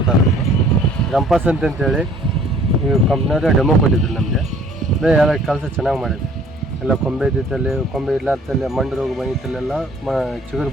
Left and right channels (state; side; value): normal; both; correlation 0.56